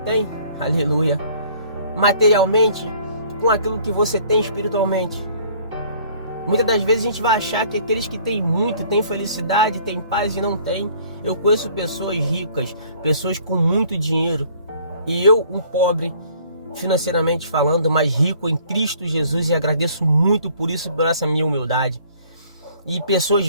aleluia, materialmente, com aquilo que você tem espiritualmente? Muitas das vezes a gente vai achar que aqueles que têm muito, têm felicidade, têm paz e não têm. Eu conheço pessoas ricas, pessoas com muito dinheiro, e eu, um pobre, financeiramente falando, mas rico em Cristo Jesus, e agradeço muito por isso, por essa minha humildade. E pessoas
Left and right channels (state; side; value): inverted; both; correlation -0.57